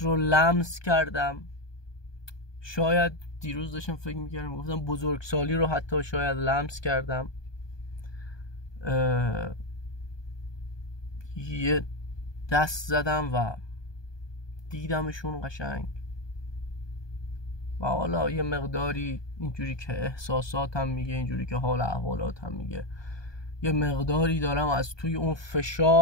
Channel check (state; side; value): late; right; 1.2 ms